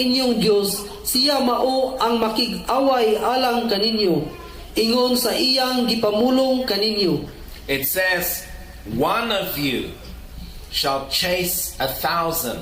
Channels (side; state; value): both; identical; correlation 1.00